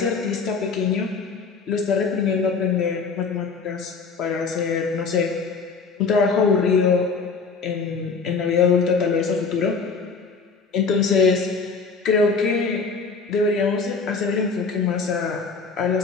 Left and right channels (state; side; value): quieter; right; 4.9 dB